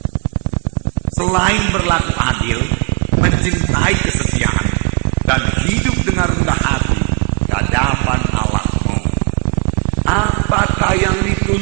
Selain berlaku adil, mencintai kesetiaan, dan hidup dengan rendah hati di hadapan Allahmu. Apakah yang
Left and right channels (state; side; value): quieter; left; 36.7 dB